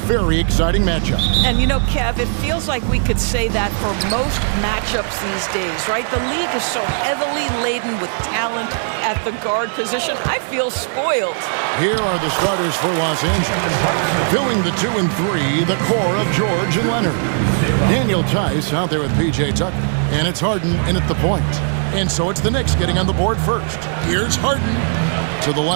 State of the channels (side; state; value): left; silent; digital silence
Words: exciting matchup. And you know, Kev, it feels like we could say that for most matchups these days, right? The league is so heavily laden with talent at the guard position. I feel spoiled. Here are the starters for Los Angeles. Filling the 2 and 3, the core of George and Leonard. Daniel Tice out there with P.J. Tucker. And it's Harden in at the point. And so it's the Knicks getting on the board first. Here's Harden to the